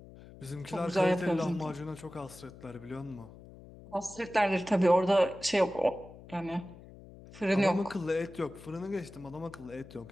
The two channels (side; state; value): left; noise; hum, 18 dB below the sound